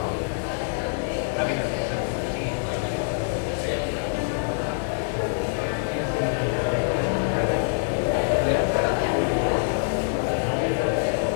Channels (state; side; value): silent; right; digital silence